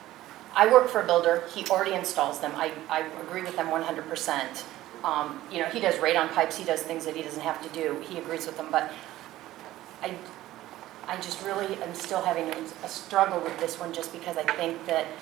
I work for a builder, he already installs them, I agree with them 100%. You know, he does radon pipes, he does things that he doesn't have to do, he agrees with them, but I just really am still having a struggle with this one, just because I think that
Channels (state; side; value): quieter; left; 15.3 dB